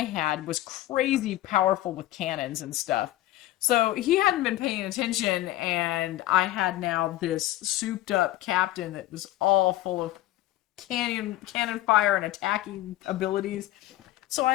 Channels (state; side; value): quieter; right; 15.5 dB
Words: had was crazy powerful with cannons and stuff. So he hadn't been paying attention, and I had now this souped up captain that was all full of cannon fire and attacking abilities. So